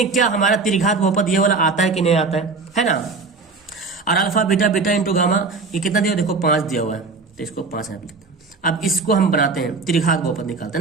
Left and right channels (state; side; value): quieter; left; 4.3 dB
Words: क्या हमारा त्रिघात बहुपद ये वाला आता है कि नहीं आता है ना। और alpha beta beta into gamma ये कितना दिया, देखो 5 दिया हुआ है, तो इसको 5 यहाँ पे लिखते हैं। अब इसको हम बनाते हैं, त्रिघात बहुपद निकालते